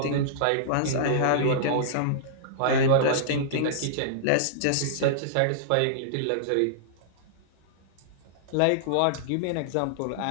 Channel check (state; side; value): different; both; correlation -0.02